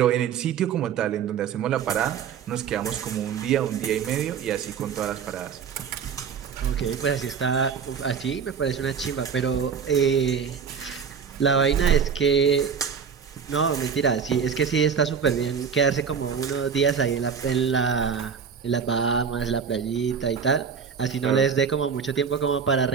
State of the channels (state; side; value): quieter; left; 6.7 dB